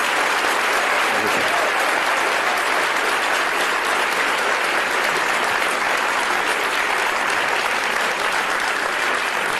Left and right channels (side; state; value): both; identical; correlation 1.00